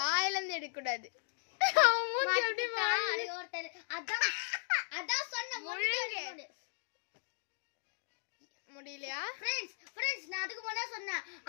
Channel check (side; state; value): right; silent; digital silence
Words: இருந்து எடுக்க கூடாது. அதான் சொன்ன முடியலையா? ஃப்ரெண்ட்ஸ் நான் அதுக்கு முன்னாடி சொன்னேன்.